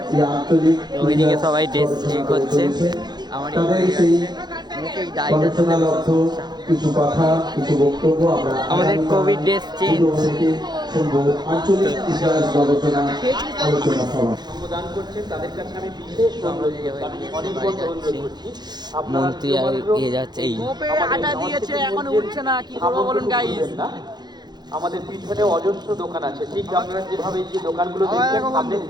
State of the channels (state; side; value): late; left; 0.21 ms